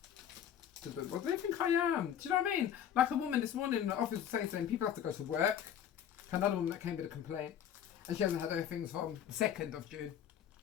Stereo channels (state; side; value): quieter; right; 9.5 dB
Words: What do they think I am? Do you know what I mean? Like a woman this morning in the office was saying people have to go to work. Another woman that came with a complaint, and she hasn't had her things from the 2nd of June.